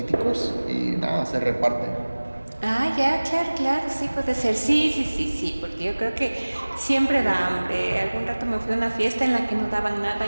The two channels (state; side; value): inverted; both; correlation -1.00